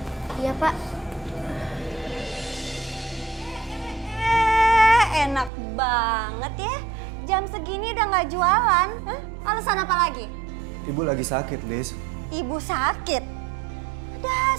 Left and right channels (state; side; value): drops out; left; at 5.5 s